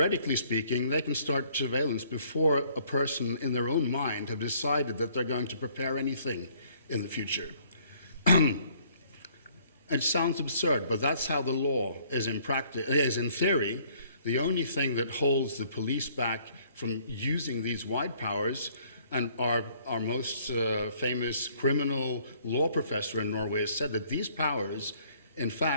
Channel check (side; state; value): both; inverted; correlation -0.62